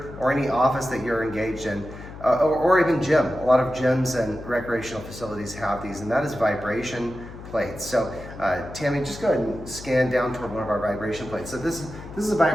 or any office that you're engaged in, or even gym. A lot of gyms and recreational facilities have these, and that is vibration plates. So Tammy, just go ahead and scan down toward one of our vibration plates. So this is a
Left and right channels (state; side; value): noise; left; hum, 14 dB below the sound